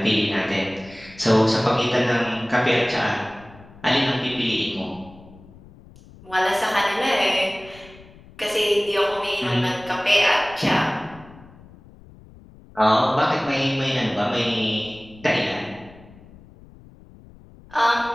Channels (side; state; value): left; noise; rumble, 22 dB below the sound